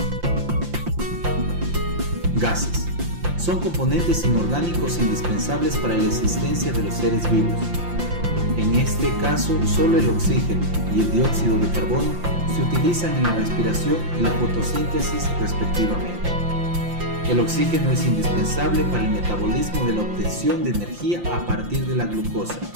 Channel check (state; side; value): late; left; 5.8 ms